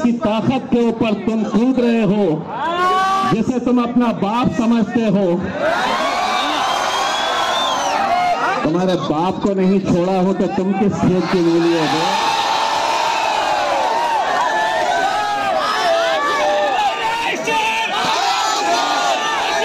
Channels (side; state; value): both; identical; correlation 1.00